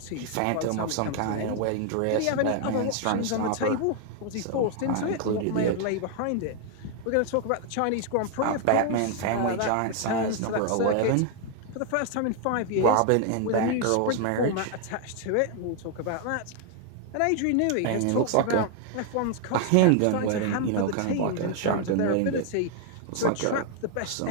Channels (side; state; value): both; different; correlation 0.00